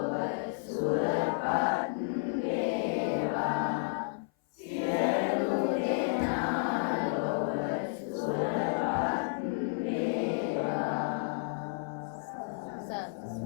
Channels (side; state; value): right; silent; 55 dB below the other